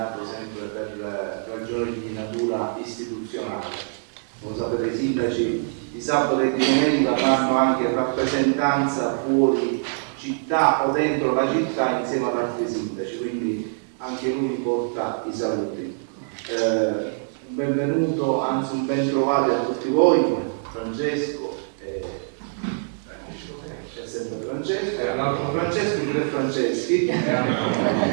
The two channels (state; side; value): silent; left; digital silence